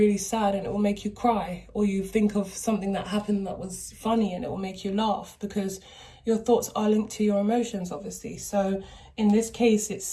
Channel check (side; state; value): both; identical; correlation 1.00